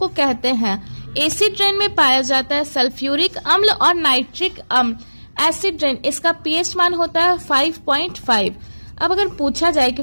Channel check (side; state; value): both; inverted; correlation -1.00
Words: कहते हैं। एसिड रेन में पाया जाता है सल्फ्यूरिक अम्ल और नाइट्रिक अम्ल। एसिड रेन इसका पीएच मान होता है 5.5। अब अगर पूछा जाए कि